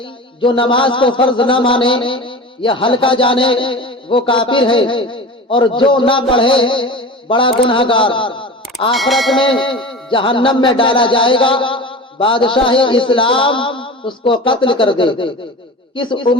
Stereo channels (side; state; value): both; normal; correlation 0.33